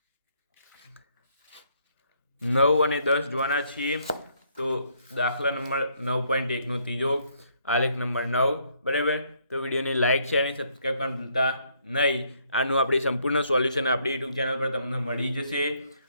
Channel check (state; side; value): inverted; both; correlation -0.69